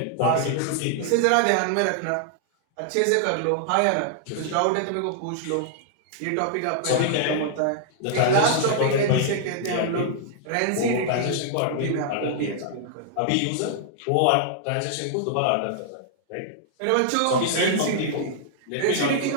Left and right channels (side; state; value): both; different; correlation -0.01